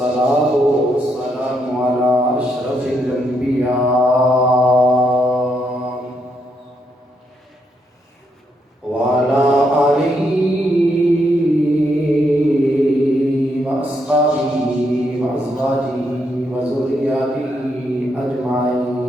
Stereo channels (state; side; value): normal; both; correlation 0.77